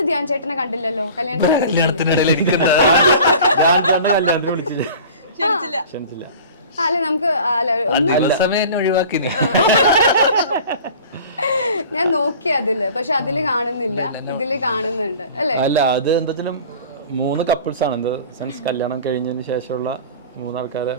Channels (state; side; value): inverted; both; correlation -0.42